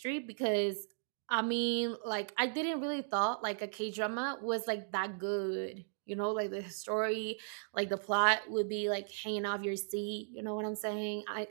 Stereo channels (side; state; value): left; silent; digital silence